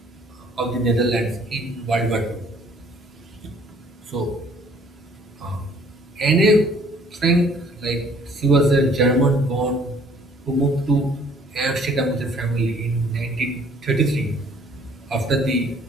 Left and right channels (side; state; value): both; normal; correlation 0.58